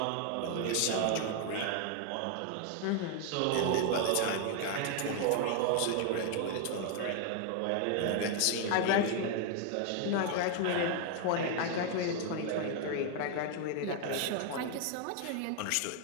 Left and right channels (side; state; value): both; different; correlation 0.00